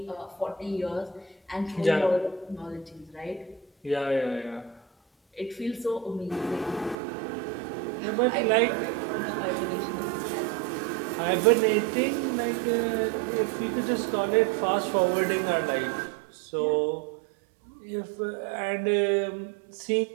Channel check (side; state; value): left; drops out; at 7.0 s